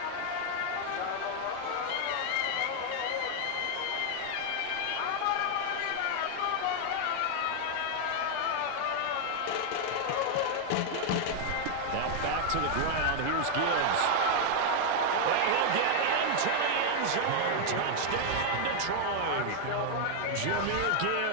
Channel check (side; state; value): both; different; correlation 0.00